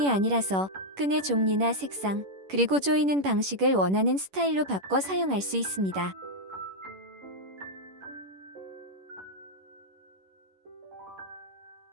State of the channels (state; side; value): late; left; 10 ms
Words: 아니라서 끈의 종류나 색상, 그리고 조이는 방식을 원하는 스타일로 바꿔 사용할 수 있습니다.